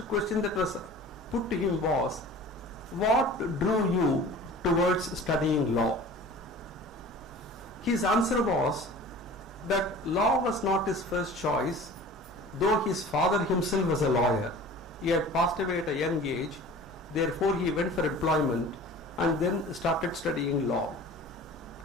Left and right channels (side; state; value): both; normal; correlation 0.42